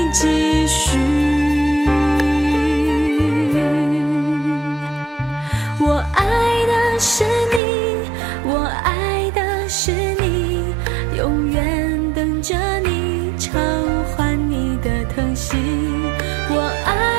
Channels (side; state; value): left; drops out; at 7.6 s